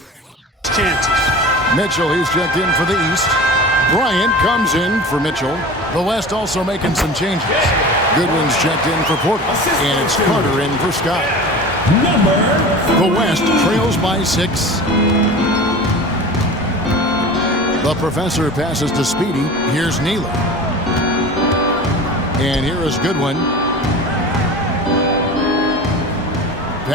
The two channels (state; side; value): normal; both; correlation 0.35